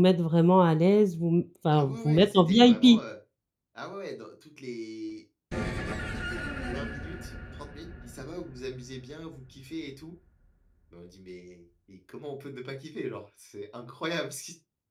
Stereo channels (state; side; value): identical; both; correlation 1.00